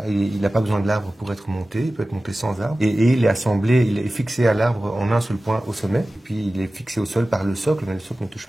Il n'a pas besoin de l'arbre pour être monté, il peut être monté sans arbre. Et il est assemblé, il est fixé à l'arbre en un seul point au sommet. Et puis il est fixé au sol par le socle, mais le socle ne touche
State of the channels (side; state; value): both; normal; correlation 0.96